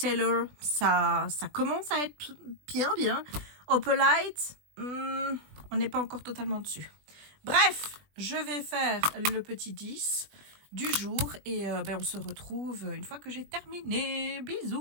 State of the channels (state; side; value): late; left; 20 ms